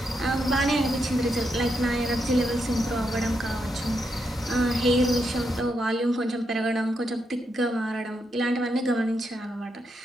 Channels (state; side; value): normal; both; correlation 0.82